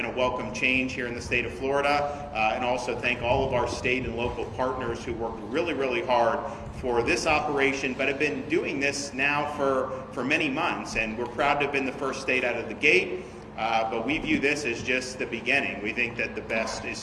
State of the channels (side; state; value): both; identical; correlation 1.00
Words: a welcome change here in the state of Florida, and also thank all of our state and local partners who worked really, really hard for this operation, but have been doing this now for many months, and we're proud to have been the first state out of the gate. But we view this as just the beginning. We think that the best is